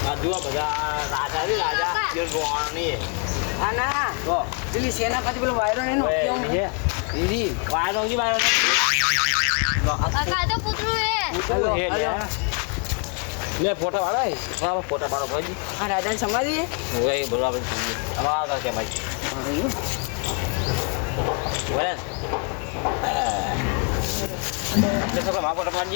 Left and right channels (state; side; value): quieter; right; 39.7 dB